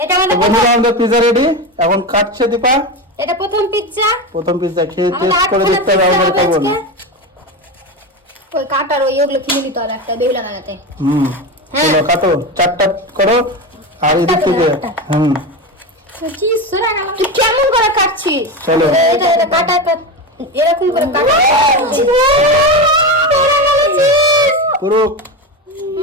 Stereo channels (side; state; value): both; normal; correlation 0.19